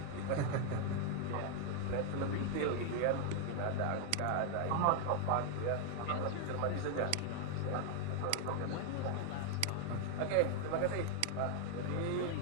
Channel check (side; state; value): both; different; correlation 0.00